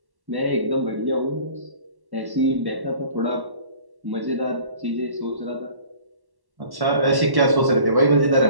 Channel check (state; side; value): late; left; 1.1 ms